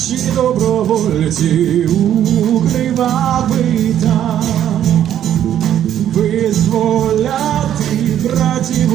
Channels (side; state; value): left; quieter; 10.7 dB